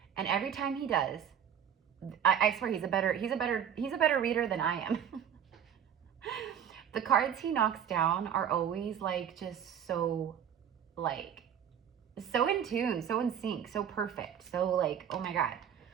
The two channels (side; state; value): left; quieter; 8.7 dB